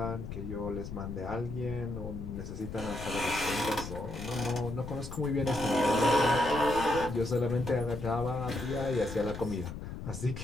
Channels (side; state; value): left; noise; rumble, 8 dB below the sound